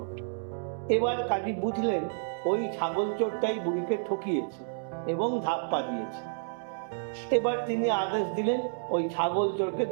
এবার কাজী বুঝলেন ওই ছাগল চোরটাই বুড়িকে ঠকিয়েছে এবং ধাপ্পা দিয়েছে। এবার তিনি আদেশ দিলেন ওই ছাগল চোরকে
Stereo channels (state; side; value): silent; left; digital silence